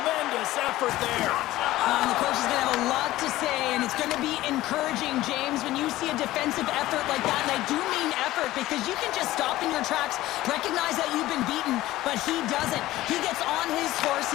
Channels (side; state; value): right; quieter; 16.3 dB